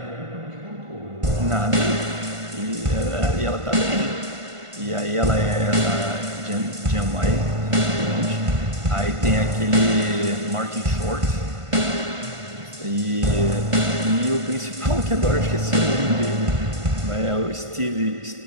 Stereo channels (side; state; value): left; late; 1.5 ms